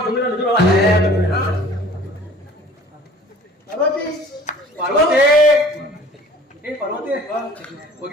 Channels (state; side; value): normal; both; correlation 0.48